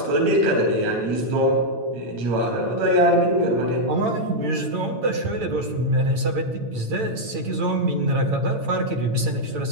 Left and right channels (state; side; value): late; left; 8.9 ms